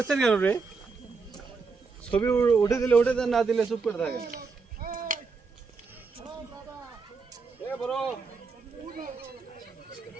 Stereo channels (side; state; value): left; quieter; 4.7 dB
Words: কেন রে ছবি উঠে দিলে উঠে দেন না দিলে চুপ করে থাকে এ বড়